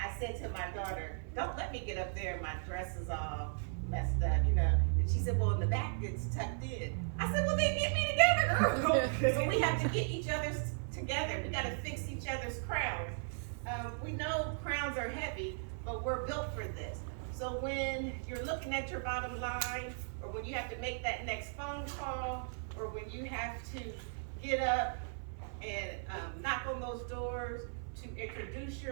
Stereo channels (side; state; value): left; silent; 53 dB below the other